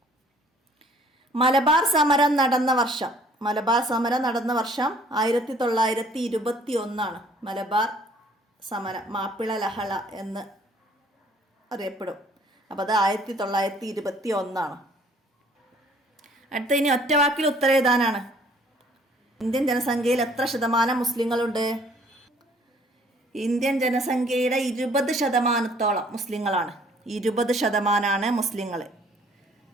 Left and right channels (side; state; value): both; normal; correlation 0.58